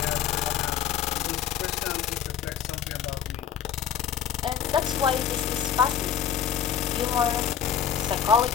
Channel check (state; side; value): quieter; right; 8.8 dB